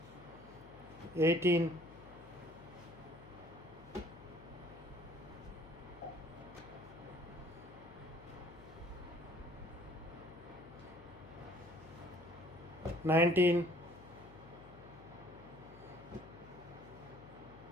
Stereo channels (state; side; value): noise; left; hum, 18 dB below the sound